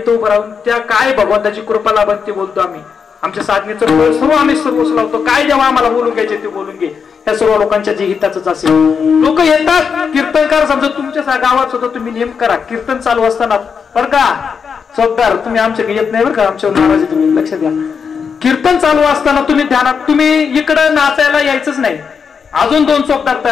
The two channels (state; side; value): quieter; right; 6.2 dB